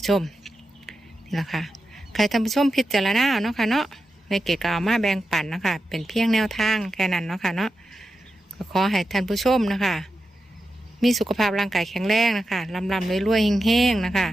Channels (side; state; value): both; normal; correlation 0.90